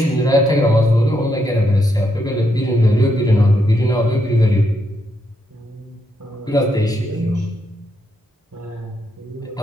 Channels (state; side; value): normal; both; correlation 0.79